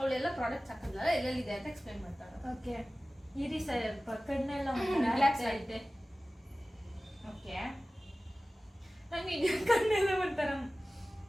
ಪ್ರಾಡಕ್ಟ್ಸ್ ಹಾಕಿದ್ಲಲ್ಲ, ಎಲ್ಲೆಲ್ಲಿದೆ ಅಂತ ಎಕ್ಸ್ಪ್ಲೈನ್ ಮಾಡ್ತಾಳೆ. ಓಕೆ, ಇರಿ ಸ್ವಲ್ಪ ಕಣ್ಣೆಲ್ಲ ರಿಲ್ಯಾಕ್ಸ್ ಐತೆ. ಓಕೆ, ನಂಗೆ ಕಣ್ಣೆಲ್ಲ ಒಂಥರ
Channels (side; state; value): both; normal; correlation 0.97